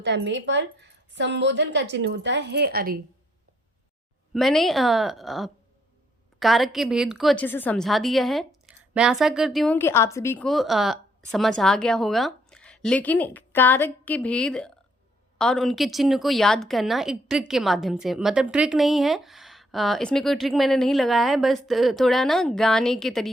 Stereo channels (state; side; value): normal; both; correlation 0.70